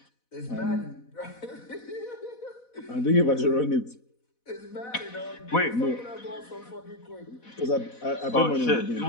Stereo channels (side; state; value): right; late; 4.1 ms